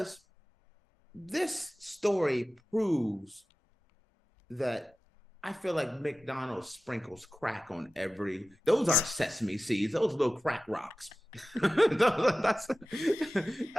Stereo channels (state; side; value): normal; both; correlation 0.95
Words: this story proves that I feel like McDonald's sprinkles crack on those aren't sesame seeds, those little crack rocks. that's